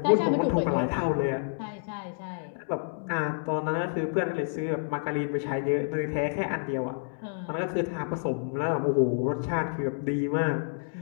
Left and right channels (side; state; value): right; silent; digital silence